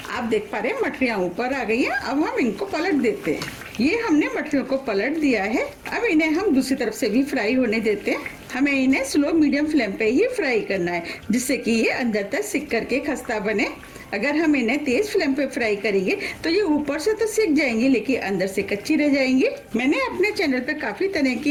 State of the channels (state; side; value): identical; both; correlation 1.00